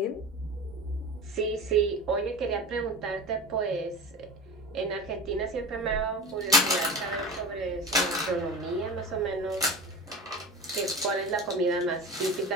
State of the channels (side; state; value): both; normal; correlation 0.31